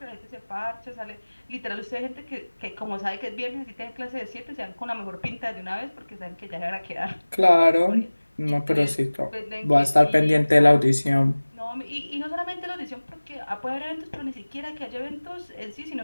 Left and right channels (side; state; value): both; inverted; correlation -1.00